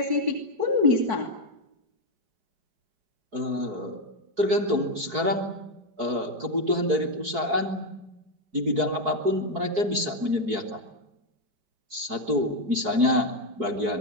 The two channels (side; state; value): left; late; 4.7 ms